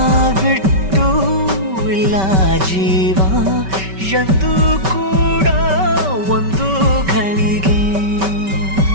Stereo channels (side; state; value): left; late; 5.2 ms